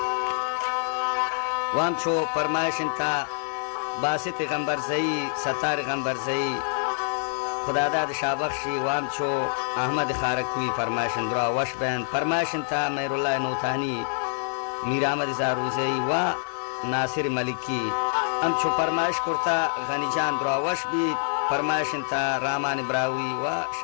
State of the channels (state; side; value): silent; right; 61 dB below the other